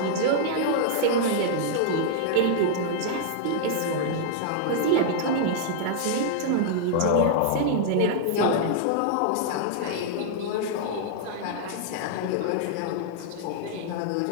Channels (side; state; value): both; different; correlation -0.01